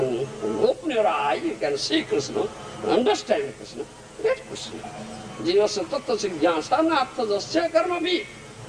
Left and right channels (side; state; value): both; identical; correlation 1.00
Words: open your eye, you can see Krishna, understand Krishna, get Krishna. Jivasya tattva siddhyasa natha jasya karma bhi.